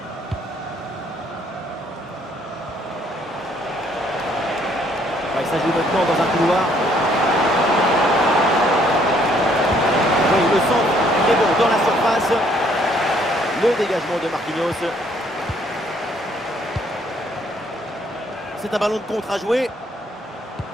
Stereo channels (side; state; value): both; normal; correlation 0.65